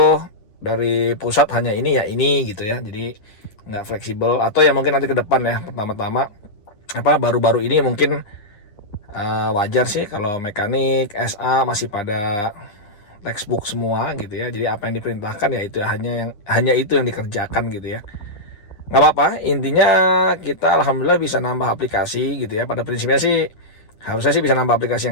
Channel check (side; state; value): right; late; 9.8 ms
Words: dari pusat hanya ini ya ini gitu ya, jadi nggak fleksibel. Atau ya mungkin nanti ke depan ya, pertama-tama baru-baru ini mungkin wajar sih kalau mekanik SA masih pada textbook semua gitu ya, jadi apa yang diperintahkan ya itu hanya itu yang dikerjakan gitu ya. nggak apa-apa, intinya kita alhamdulillah bisa nambah aplikasi gitu ya. Pada prinsipnya sih harusnya sih bisa nambah aplikasi